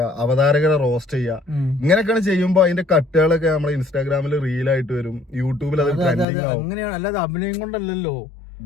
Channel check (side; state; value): right; drops out; at 6.2 s